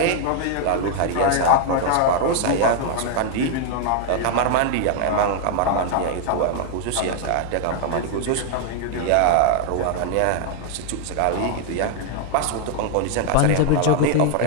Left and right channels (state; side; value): different; both; correlation 0.00